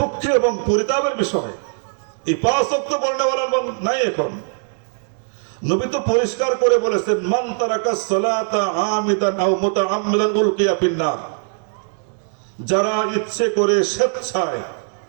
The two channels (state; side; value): silent; left; digital silence